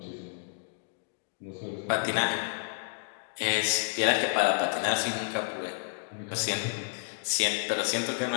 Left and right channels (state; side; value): silent; right; digital silence